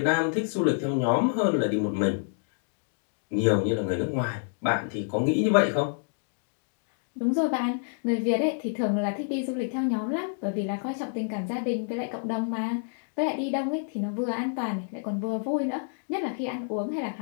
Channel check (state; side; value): silent; right; digital silence